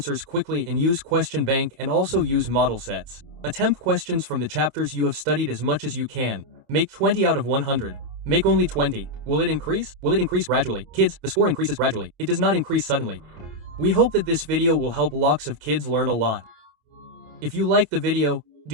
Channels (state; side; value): late; left; 27 ms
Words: quickly and use question bank and also use model sets. Attempt questions from the chapters you have studied as much as you can. Make 20 out of 100. Make only 20. Will it increase? Will it increase gradually? Kids, the score increases gradually. It does not increase suddenly. We hope that this video will help lots of kids learn a lot. If you like the video,